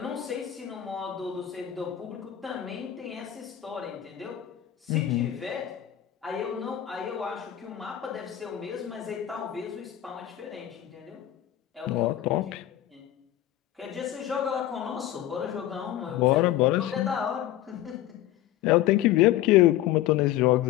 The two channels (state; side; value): quieter; right; 12.9 dB